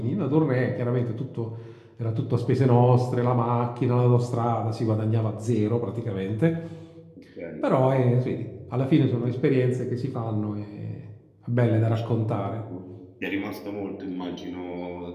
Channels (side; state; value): both; identical; correlation 1.00